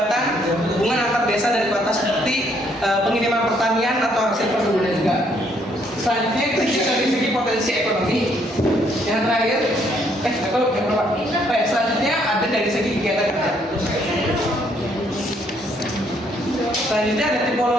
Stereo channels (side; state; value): both; normal; correlation 0.68